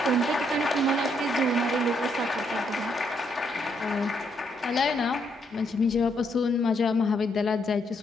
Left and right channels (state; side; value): normal; both; correlation 0.74